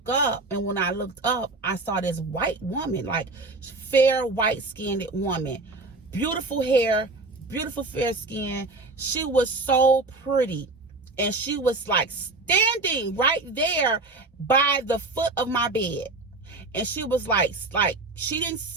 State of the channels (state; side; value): quieter; left; 3.3 dB